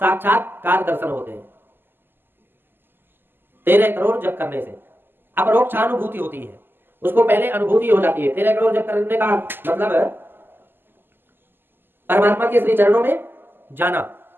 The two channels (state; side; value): late; left; 0.097 ms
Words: दर्शन होते हैं। 13 करोड़ जप करने से अपरोक्षानुभूति होती है, उसको पहले अनुभूति हो जाती है। 13 करोड़ जप करने का मतलब परमात्मा के श्री चरणों में जाना।